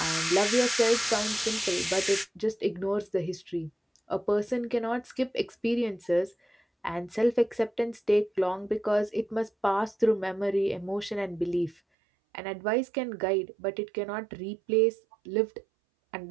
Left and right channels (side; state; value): left; drops out; at 11.8 s